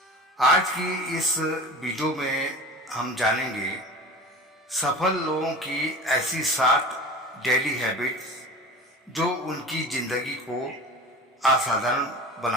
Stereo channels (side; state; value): both; normal; correlation 0.35